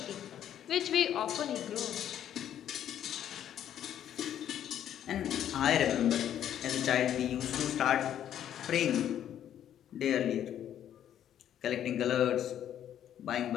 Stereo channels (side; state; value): right; quieter; 10.5 dB